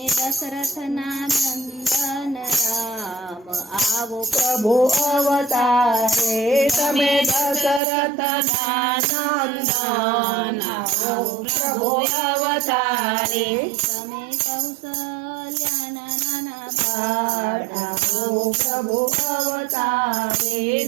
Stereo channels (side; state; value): left; drops out; at 7.8 s